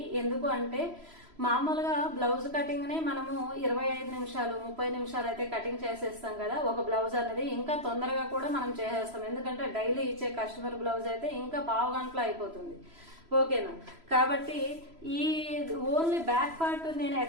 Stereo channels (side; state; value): left; late; 3.0 ms